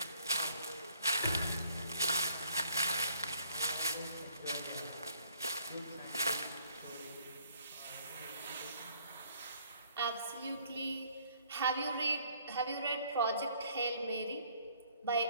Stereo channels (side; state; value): both; inverted; correlation -0.62